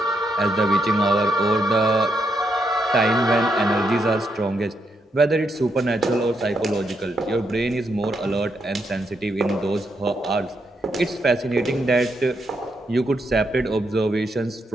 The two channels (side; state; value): both; normal; correlation 0.79